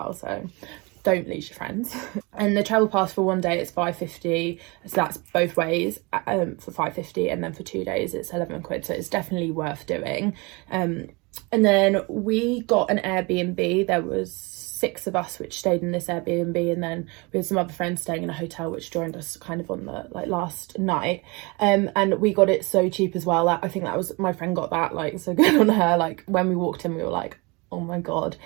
so don't lose your friends. And the travel pass for 1 day it's £5.50, so that's both ways, for £5.50, and then for 2 days it's 11 quid, so it's definitely worth doing. And then we got an Airbnb. There was 6 of us which stayed in this Airbnb, and then we had some other friends staying in a hotel which joined us kind of on the like last night. And we got it so cheap as well. I think that was, my friend got that like so good on her. Like when we walked in we were like, oh my god.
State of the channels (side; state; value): left; quieter; 27.4 dB